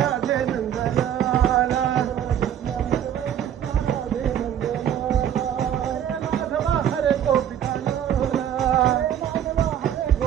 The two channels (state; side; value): quieter; left; 9.9 dB